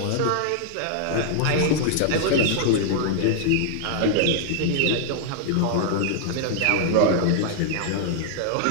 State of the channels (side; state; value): both; different; correlation 0.00